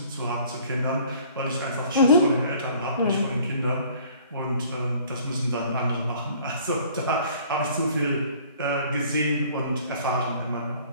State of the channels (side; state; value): both; inverted; correlation -0.54